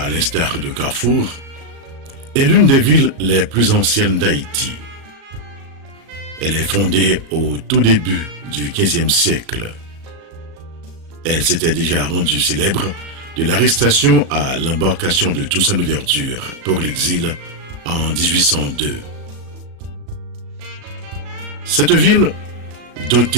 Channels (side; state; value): left; late; 37 ms